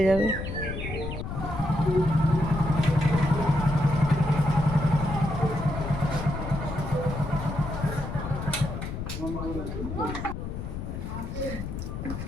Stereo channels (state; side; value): noise; left; rumble, 6 dB below the sound